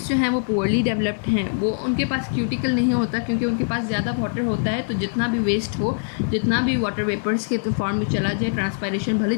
जो हैं वो पुअरली डेवलप्ड हैं, वो उनके पास क्यूटिकल नहीं होता क्योंकि उनके पास ज़्यादा वाटर होता है। तो जितना भी वेस्ट हो, जितना भी वाटर वेपर्स के फॉर्म में चला जाए, ट्रांसपायरेशन भले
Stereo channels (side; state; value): right; silent; digital silence